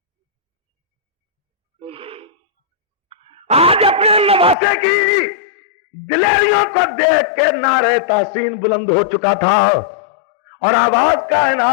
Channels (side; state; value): right; drops out; at 4.5 s